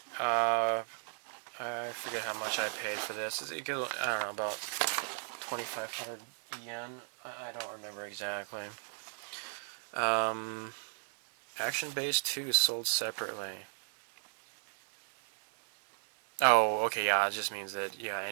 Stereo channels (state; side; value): silent; left; 54 dB below the other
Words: I forget how much I paid for this. I don't know, about 2,500 yen. I don't remember exactly. Action Base 2 sold separately. Oh, okay, yeah, it just means that, yeah,